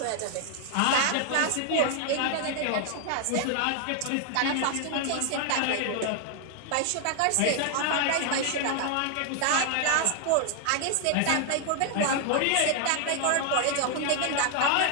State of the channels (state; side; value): different; both; correlation 0.00